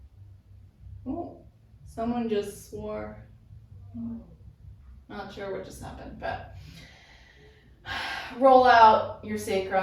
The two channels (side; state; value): both; identical; correlation 1.00